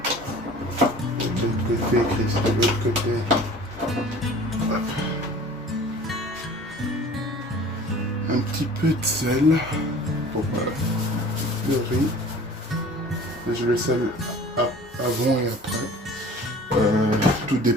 peu de sel pour le riz. Je le sel avant et après. Tout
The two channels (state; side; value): normal; both; correlation 0.45